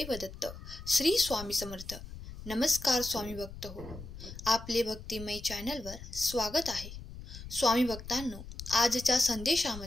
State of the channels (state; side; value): noise; left; rumble, 13 dB below the sound